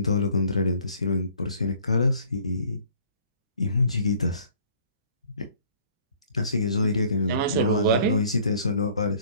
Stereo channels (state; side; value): inverted; both; correlation -0.55